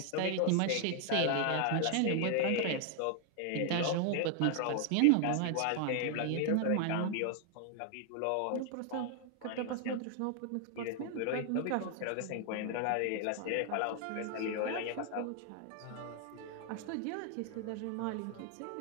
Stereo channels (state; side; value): different; both; correlation 0.00